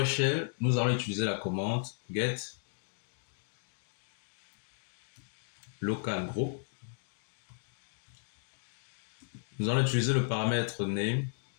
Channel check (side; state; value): right; silent; digital silence